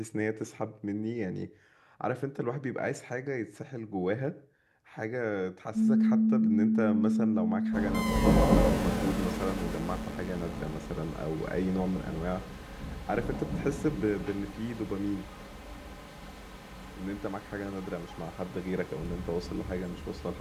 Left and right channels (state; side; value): identical; both; correlation 1.00